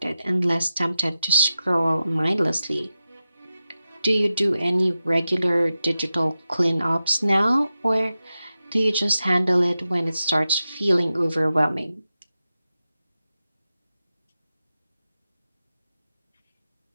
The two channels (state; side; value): inverted; both; correlation -0.92